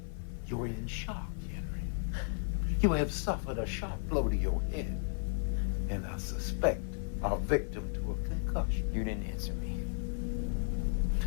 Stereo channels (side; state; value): right; silent; 55 dB below the other